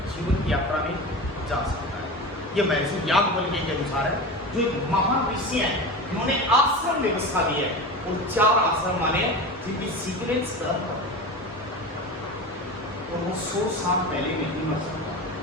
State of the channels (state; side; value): normal; both; correlation 0.28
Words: जीवन की यात्रा में जा सकता है। यह महर्षि याज्ञवल्क्य के अनुसार है, जो एक महान ऋषि हैं, उन्होंने आश्रम व्यवस्था दी है। और 4 आश्रम माने जिनकी सीक्वेंस और वो 100 साल पहले नहीं मर सकता।